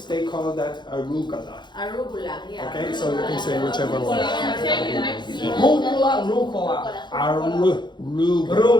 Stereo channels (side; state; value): right; late; 0.22 ms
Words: they call that arugula. Arugula, yeah. Okay, so you can say whichever one. Rucola.